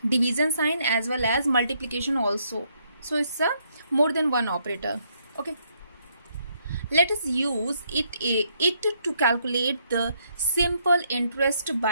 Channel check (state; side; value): inverted; both; correlation -0.72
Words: division sign as well as multiplication also. So it's a more than one operator. Okay. Let us use it to calculate the simple interest